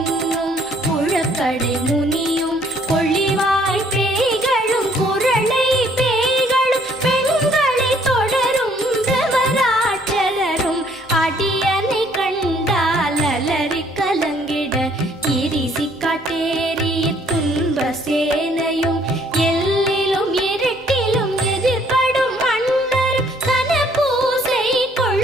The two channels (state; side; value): normal; both; correlation 0.63